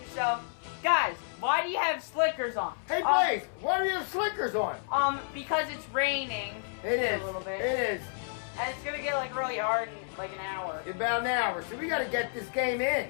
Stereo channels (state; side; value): silent; right; 57 dB below the other